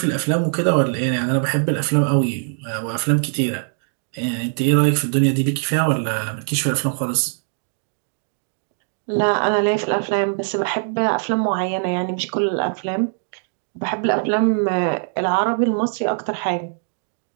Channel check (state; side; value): silent; left; digital silence